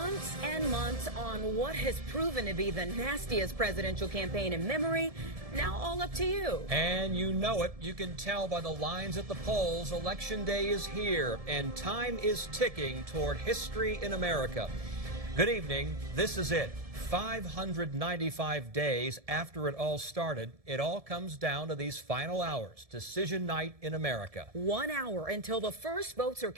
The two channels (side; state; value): left; late; 1.7 ms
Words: and months on what has proven to be the nastiest presidential campaign in memory. Now all up to you. And you know it. You can tell by the lines at the polls. Election day is here, and time is ticking toward history in America. Good evening. This is it. 595 days after it all started, it all comes down to these final hours. Decision night in America. 1 hour until the first votes are